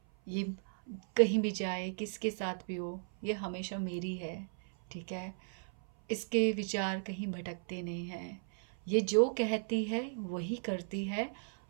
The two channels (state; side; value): silent; left; 54 dB below the other